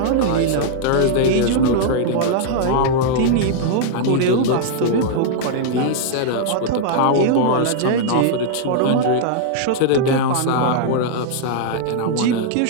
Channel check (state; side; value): different; both; correlation -0.01